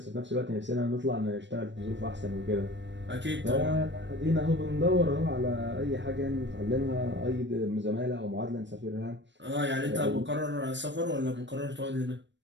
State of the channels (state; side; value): late; left; 0.53 ms